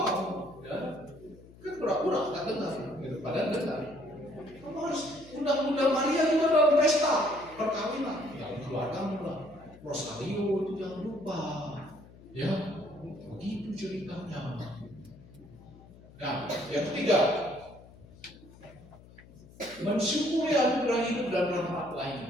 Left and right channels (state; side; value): noise; left; hum, 22 dB below the sound